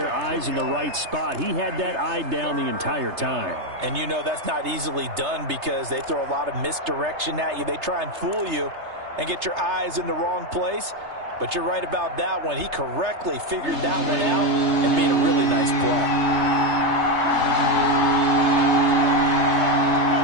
eyes in the right spot. He had that eye down the entire time. And you know that's not easily done because they throw a lot of misdirection at you. They try and fool you and get your eyes in the wrong place. But you're right about that one. He correctly figured that one out and made a really nice play.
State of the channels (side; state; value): left; late; 3.3 ms